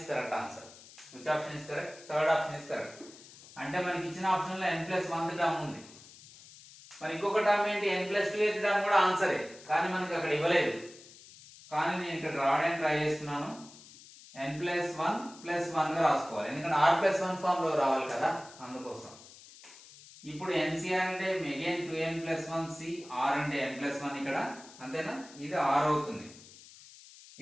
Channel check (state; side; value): noise; left; hiss, 20 dB below the sound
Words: correct answer. Which option is correct? Third option is correct. అంటే మనకి ఇచ్చిన ఆప్షన్ లో n + 1 టర్మ్ ఉంది. మరి ఇంకొక టర్మ్ ఏంటి? n + 2 టర్మ్ కూడా ఆన్సరే, కానీ మనకి అక్కడ ఇవ్వలేదు. కానీ నేను ఇక్కడ రావడానికి ట్రై చేస్తున్నాను. n + 1 + 1 గా రాసుకోవాలి, ఎందుకంటే r + 1 ఫామ్ లో రావాలి కదా, అందుకోసం. ఇప్పుడు ncr అంటే అగైన్ 2n + 1 c, r అంటే n + 1 ఇక్కడ, అంతేనా? ఇది r అవుతుంది.